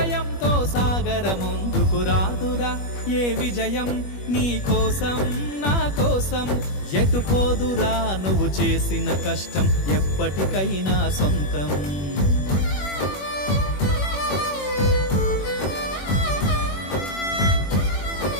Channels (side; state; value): right; late; 21 ms